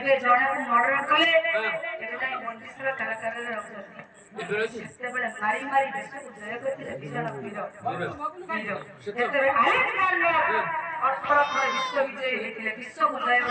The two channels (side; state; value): both; identical; correlation 1.00